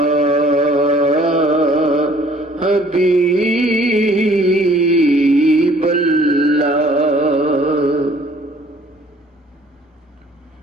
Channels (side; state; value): both; normal; correlation 0.57